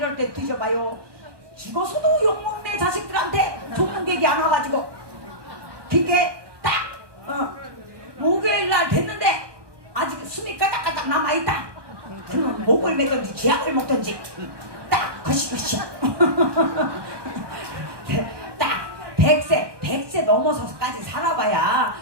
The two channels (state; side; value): late; left; 1.2 ms